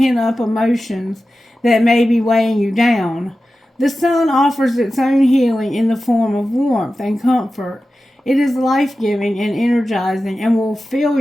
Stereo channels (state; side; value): normal; both; correlation 0.94